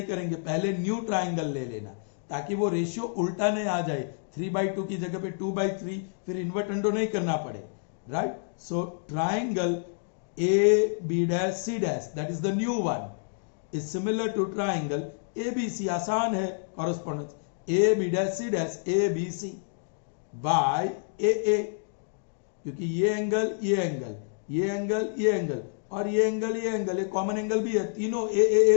करेंगे, पहले new triangle ले लेना ताकि वो ratio उल्टा नहीं आ जाए, 3/2 की जगह पे 2/3, फिर इन्वर्टेंडो नहीं करना पड़े. Right, so triangle AB dash C dash, that is the new one, is similar to triangle ABC. आसान है correspondence, AB dash C dash ABC by AA, क्योंकि ये एंगल और ये एंगल ये कॉमन एंगल भी है, तीनों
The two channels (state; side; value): silent; right; digital silence